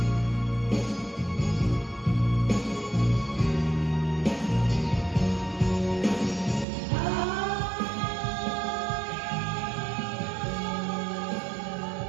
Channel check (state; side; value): drops out; left; at 6.7 s